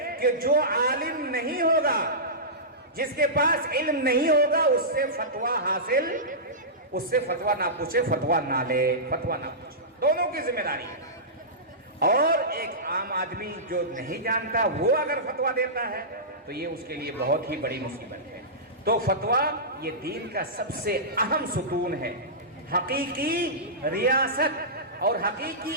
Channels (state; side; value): normal; both; correlation -0.17